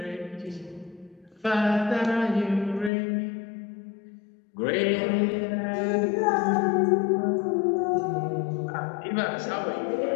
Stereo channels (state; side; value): drops out; right; at 2.9 s